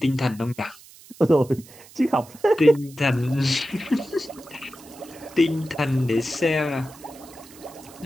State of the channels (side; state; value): right; noise; hiss, 22 dB below the sound